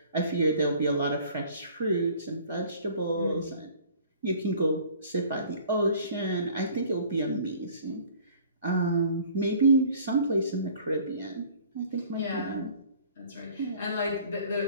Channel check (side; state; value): both; inverted; correlation -0.50